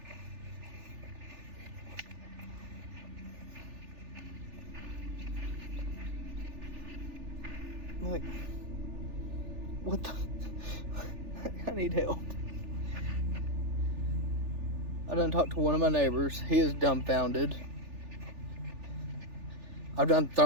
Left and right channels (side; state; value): left; late; 3.4 ms